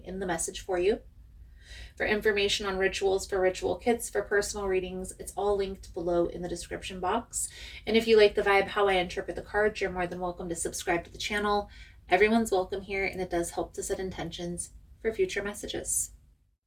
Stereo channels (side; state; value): both; identical; correlation 1.00